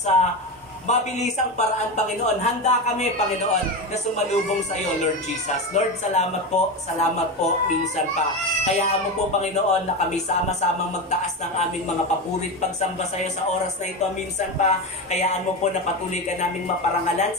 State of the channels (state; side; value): normal; both; correlation 0.19